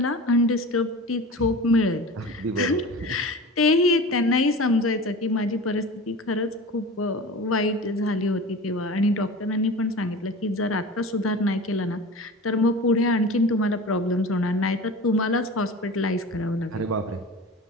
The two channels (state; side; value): normal; both; correlation 0.34